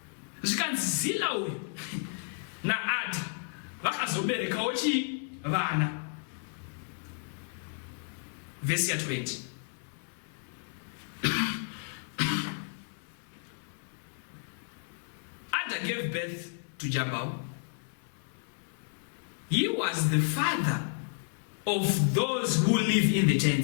Zvikanzi Zillah uyu naAdha vakazoberekawo vana. Vhesi ya 20. Ada gave birth to Jabal. He was the father of those who live in the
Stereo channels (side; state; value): right; silent; 56 dB below the other